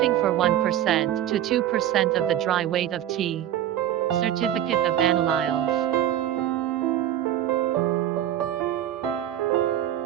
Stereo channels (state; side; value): quieter; left; 11.7 dB